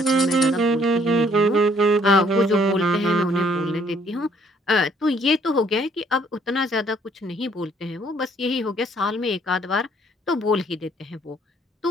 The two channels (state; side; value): normal; both; correlation 0.63